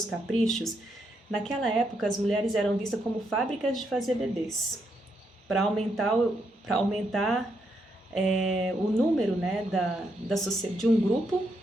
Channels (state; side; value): normal; both; correlation 0.78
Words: caprichos, naquela época as mulheres eram vistas como fábricas de fazer bebês, para aumentar o número, né, de um grupo,